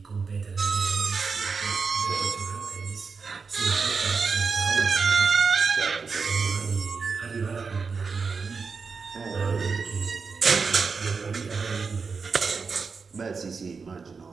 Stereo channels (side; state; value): left; quieter; 5.0 dB